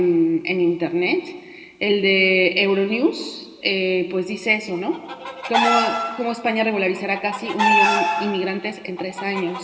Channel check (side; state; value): both; identical; correlation 1.00